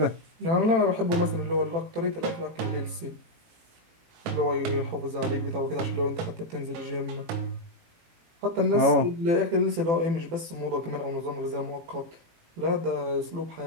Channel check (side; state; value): left; late; 18 ms